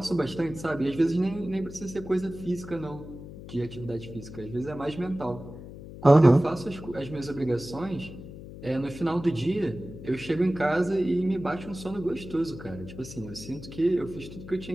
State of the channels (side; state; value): left; noise; hum, 13 dB below the sound